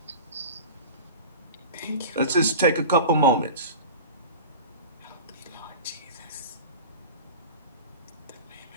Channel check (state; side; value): inverted; both; correlation -0.34